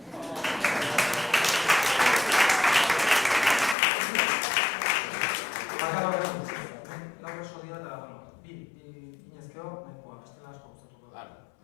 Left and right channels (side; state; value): right; drops out; at 3.8 s